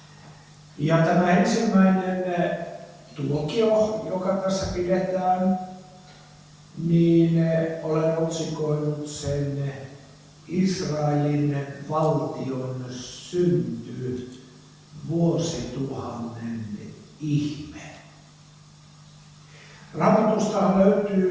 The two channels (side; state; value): both; identical; correlation 1.00